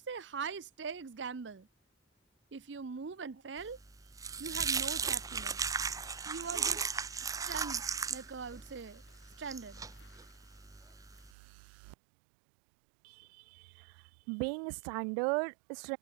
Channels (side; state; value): left; drops out; at 11.4 s